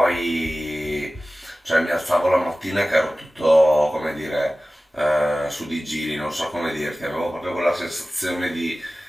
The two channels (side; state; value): both; normal; correlation 0.96